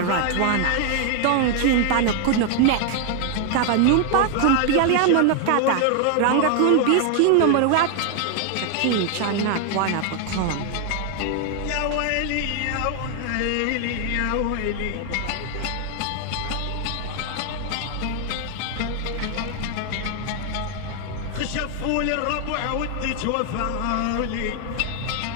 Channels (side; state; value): both; different; correlation 0.00